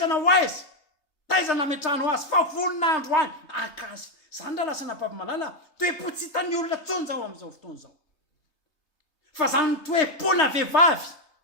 taiza nametrahanao azy fa voninandro any aka azy zany raha lasana bavimalala toe-po tsy hitan'ny olona tsony zao amin'izao fotoana zao fa zany toe-pona vehivavy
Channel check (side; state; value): right; late; 3.2 ms